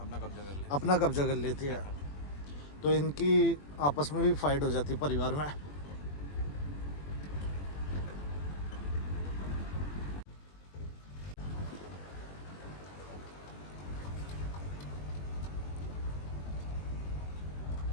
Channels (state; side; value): late; right; 21 ms